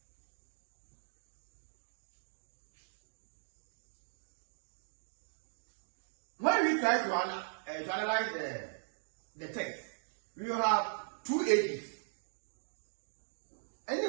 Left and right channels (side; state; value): left; silent; digital silence